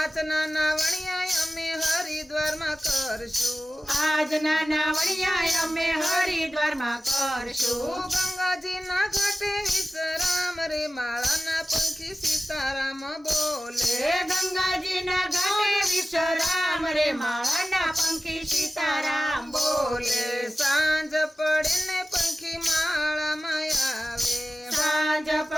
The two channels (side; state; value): both; normal; correlation 0.96